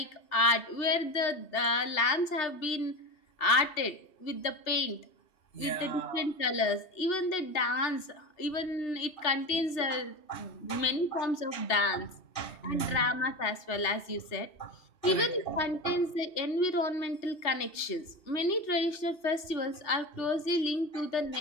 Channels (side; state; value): right; late; 2.7 ms